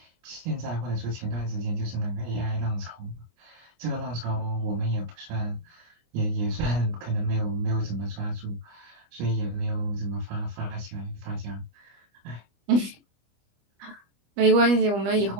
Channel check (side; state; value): left; late; 25 ms